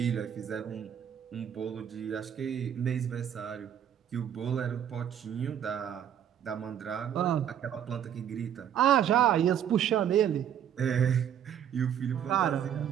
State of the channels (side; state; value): left; quieter; 9.5 dB